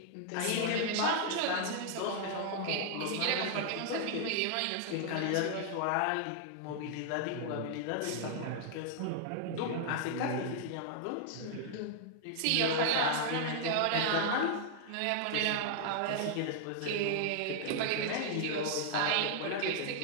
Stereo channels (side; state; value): both; different; correlation -0.01